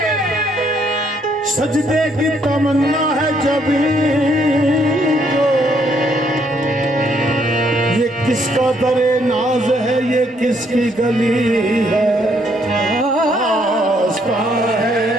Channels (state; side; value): normal; both; correlation 0.70